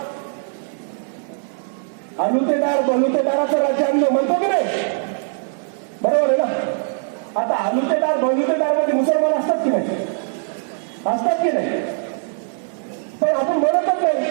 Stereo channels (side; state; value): left; silent; digital silence